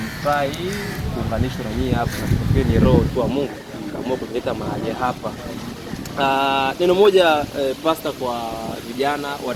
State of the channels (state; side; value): identical; both; correlation 1.00